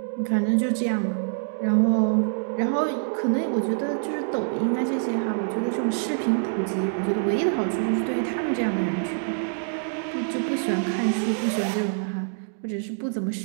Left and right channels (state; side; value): silent; left; digital silence